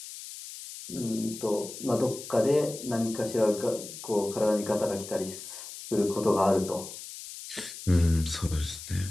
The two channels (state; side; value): noise; left; hiss, 12 dB below the sound